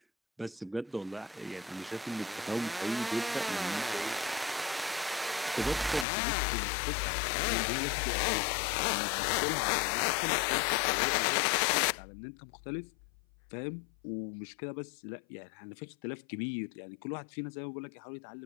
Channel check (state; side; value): drops out; right; at 6.1 s